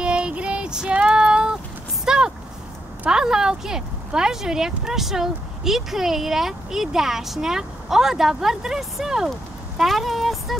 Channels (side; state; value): both; normal; correlation 0.81